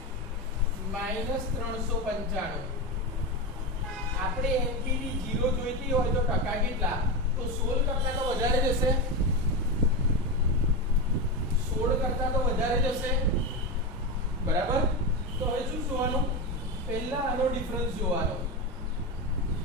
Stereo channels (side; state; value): both; normal; correlation 0.16